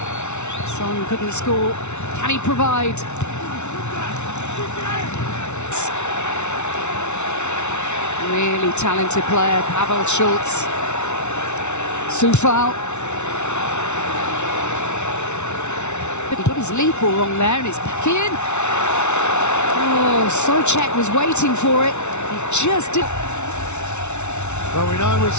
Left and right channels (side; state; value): right; late; 0.82 ms